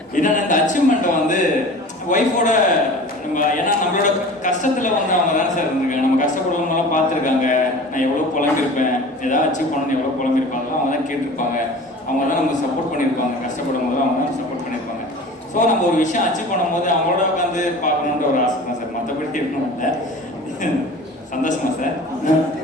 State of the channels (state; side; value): normal; both; correlation 0.39